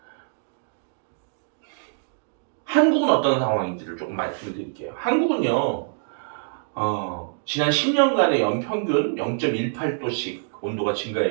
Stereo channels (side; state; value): left; silent; digital silence